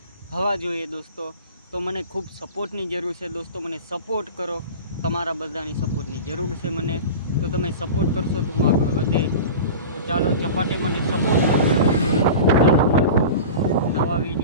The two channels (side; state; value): both; inverted; correlation -0.33